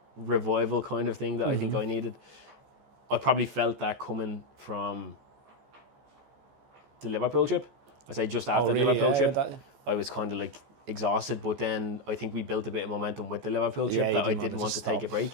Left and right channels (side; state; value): left; late; 14 ms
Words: revival kind of thing that I think I needed. I probably felt that coming from the Liverpool trip. I say just after the Liverpool trip, I was kind of exhausted, but then I think we built a bit of momentum with the Liverpool trip that I didn't want to take a break.